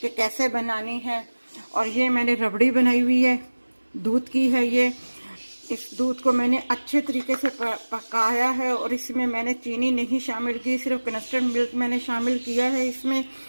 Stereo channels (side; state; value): both; inverted; correlation -1.00